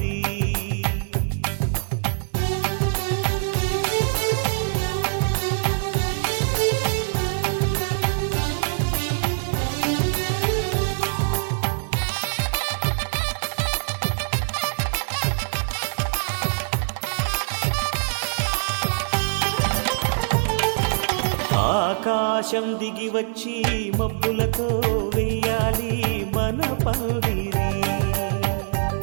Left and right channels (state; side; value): silent; left; digital silence